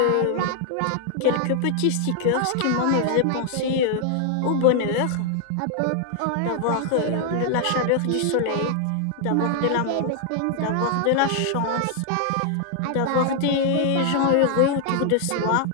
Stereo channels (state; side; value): different; both; correlation 0.00